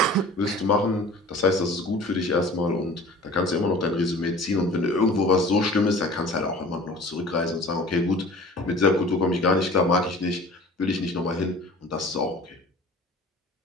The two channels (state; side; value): normal; both; correlation 0.44